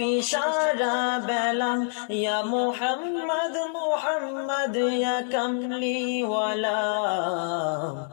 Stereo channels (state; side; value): silent; right; digital silence